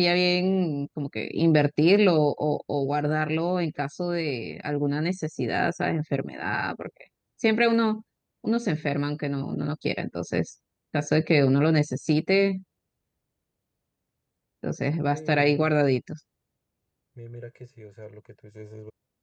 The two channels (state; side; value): identical; both; correlation 1.00